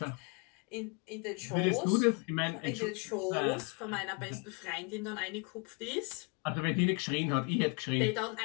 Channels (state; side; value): quieter; right; 33.3 dB